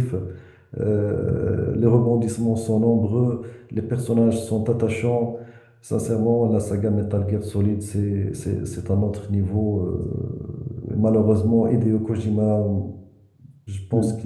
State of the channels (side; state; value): both; identical; correlation 1.00